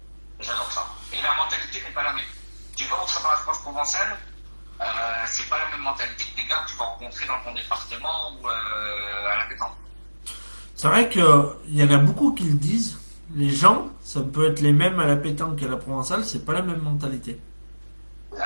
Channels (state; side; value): inverted; both; correlation -1.00